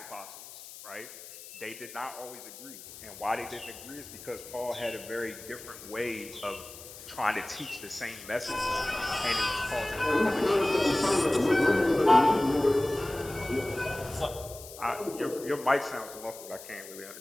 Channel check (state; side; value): noise; left; hiss, 15 dB below the sound